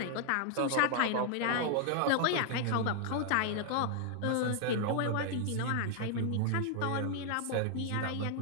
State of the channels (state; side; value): different; both; correlation 0.00